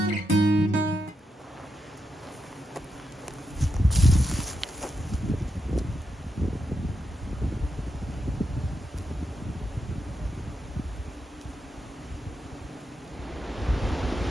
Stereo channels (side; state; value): both; normal; correlation 0.85